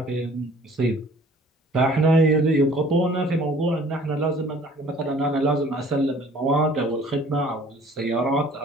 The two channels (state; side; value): normal; both; correlation 0.53